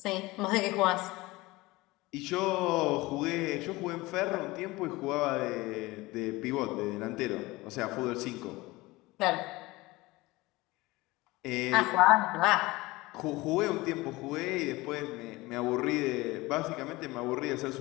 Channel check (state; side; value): quieter; right; 20.9 dB